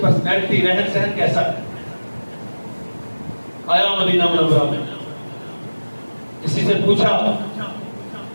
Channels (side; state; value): both; inverted; correlation -1.00